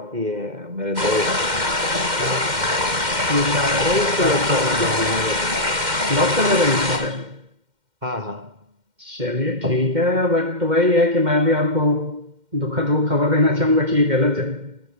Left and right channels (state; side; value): late; left; 2.1 ms